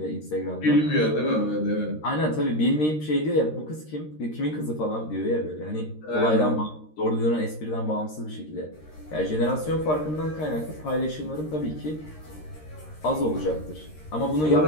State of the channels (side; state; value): right; late; 13 ms